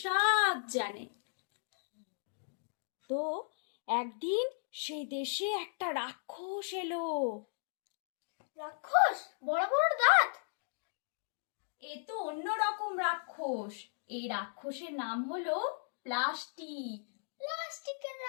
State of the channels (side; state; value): right; silent; digital silence